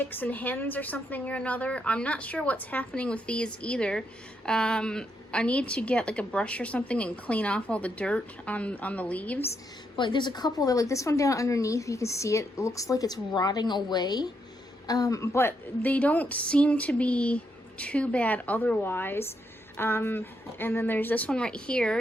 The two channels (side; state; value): both; normal; correlation 0.79